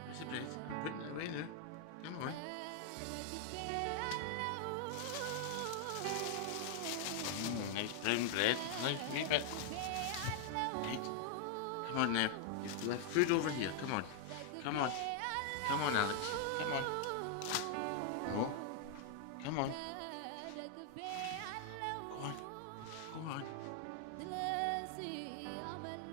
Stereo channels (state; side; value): different; both; correlation 0.00